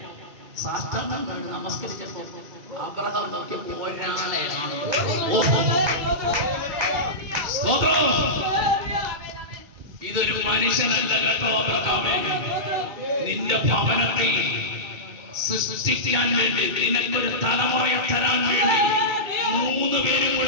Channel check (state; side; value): late; left; 2.2 ms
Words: സാഷ്ടാംഗം കണ്ട് നമസ്കരിച്ചപ്പോ അബ്രഹാം നോക്കിയപ്പോ ഒരാളെയാണ്. ഇതൊരു മനുഷ്യനല്ല കേട്ടോ അബ്രഹാമേ. നിന്റെ ഭവനത്തിൽ സൃഷ്ടിക്കാൻ വേണ്ടി, നിനക്കൊരു തലമുറയെ തരാൻ വേണ്ടി 3 പേരും